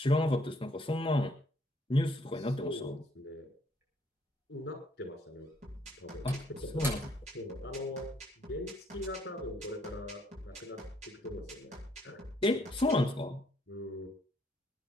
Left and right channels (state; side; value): normal; both; correlation 0.68